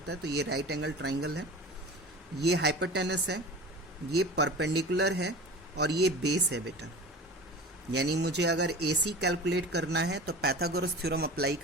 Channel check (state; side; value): normal; both; correlation 0.36